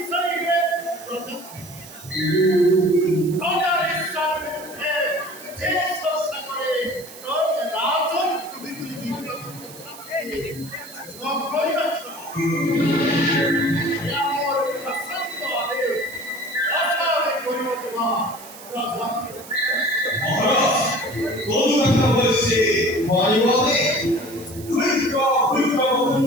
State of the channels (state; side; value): noise; right; hiss, 17 dB below the sound